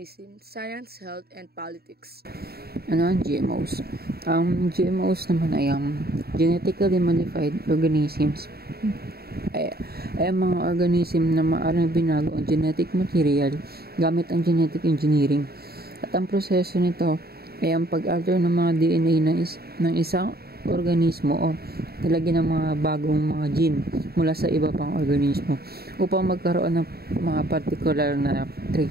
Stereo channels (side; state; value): left; late; 0.45 ms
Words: science, health, and politics. Ano ang GMOs? Ang GMOs naman ay genetically modified organisms. Ay mga organism na maaaring binago ang genetic material gamit ang genetic engineering. At ang proseso nito ay ang pag-alter ng mga DNA ng isang organismo o nilagyan ng mga bagong mga gene mula sa iba pang organismo upang magkaroon ng mga particular na